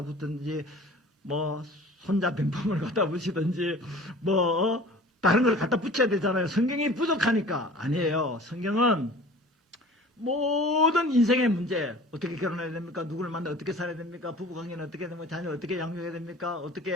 붙든지 뭐 손자병풍을 갖다 붙이든지 뭐 다른 걸 갖다 붙여야 되잖아요. 성경이 부족하니까. 아니에요. 성경은 모든 인생의 문제, 어떻게 결혼해야 됩니까? 누구를 만나 어떻게 살아야 됩니까? 부부관계는 어떻게 해야 됩니까? 자녀를 어떻게 양육해야 됩니까?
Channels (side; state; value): both; normal; correlation 0.44